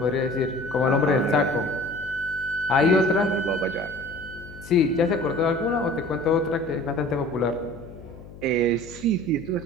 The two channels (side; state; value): left; noise; hum, 17 dB below the sound